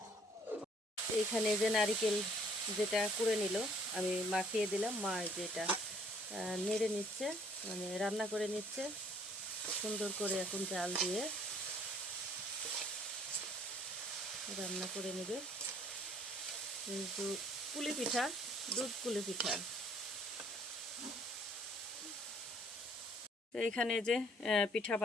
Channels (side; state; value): both; normal; correlation 0.60